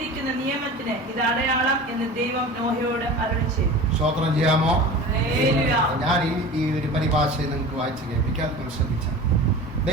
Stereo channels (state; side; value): normal; both; correlation 0.36